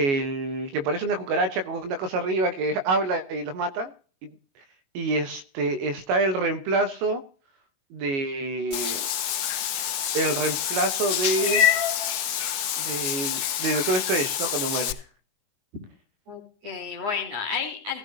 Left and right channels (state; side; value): late; left; 22 ms